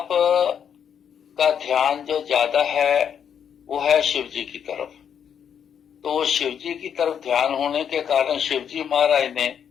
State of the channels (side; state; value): right; quieter; 8.2 dB